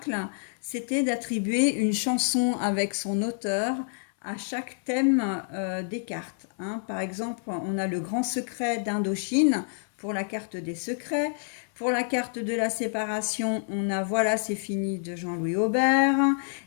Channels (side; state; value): right; silent; 58 dB below the other